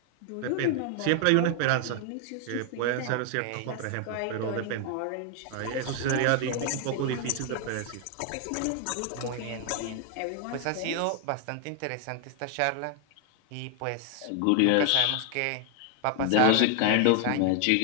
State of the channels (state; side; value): different; both; correlation 0.00